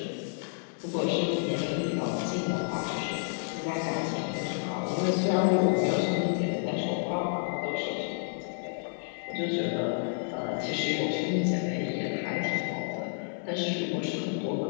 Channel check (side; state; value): right; silent; digital silence